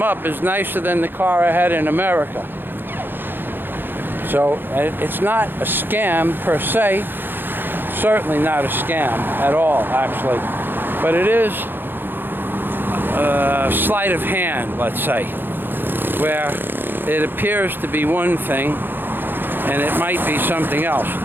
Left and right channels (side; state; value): left; late; 0.098 ms